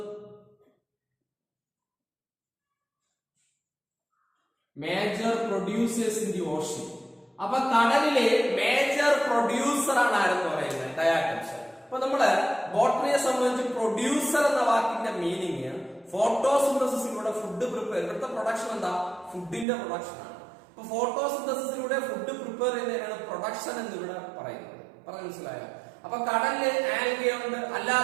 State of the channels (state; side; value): drops out; left; at 19.7 s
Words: Major producers in the Ocean. അപ്പൊ കടലിലെ മേജർ പ്രൊഡ്യൂസർ ആണ് ആരെന്ന് പറയുന്നത്? ഡയാറ്റംസ്. അപ്പൊ നമ്മള് ബോട്ടണിയെ സംബന്ധിച്ച് പ്രൊഡ്യൂസർ എന്ന വാക്കിന്റെ മീനിങ് ഫോട്ടോസിന്തസിസിലൂടെ ഫുഡ് പ്രിപ്പയർ. ഇവിടുത്തെ പ്രൊഡക്ഷൻ എന്താ? ഫുഡിന്റെ പ്രൊഡക്ഷൻ ആണ്. അപ്പൊ ഫോട്ടോസിന്തസിസിലൂടെ ഫുഡ് പ്രിപ്പയർ ചെയ്യുന്നതിനാണ് പ്രൊഡക്ഷൻ എന്ന് ഇവിടെ പറയുന്നത്. പറഞ്ഞു മനസ്സിലായോ? അപ്പൊ കടലില് ആൽഗെ ഉണ്ട്,